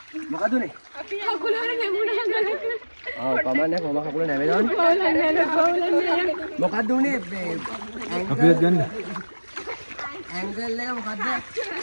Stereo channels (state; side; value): inverted; both; correlation -1.00